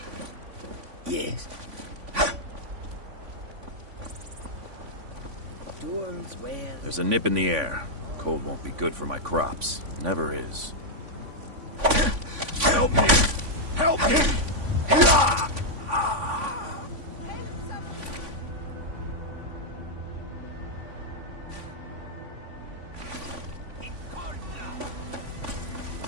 Yes. Tools where... There's a nip in the air. Cold won't be good for my crops. Never is. Help me! Help me!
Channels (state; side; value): late; left; 3.5 ms